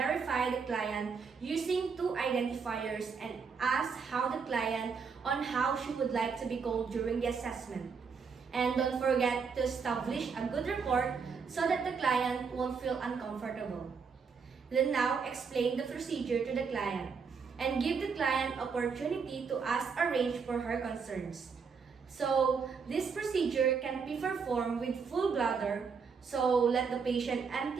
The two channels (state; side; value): quieter; left; 5.6 dB